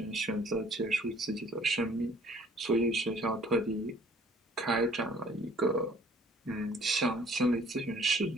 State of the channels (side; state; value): both; normal; correlation 0.56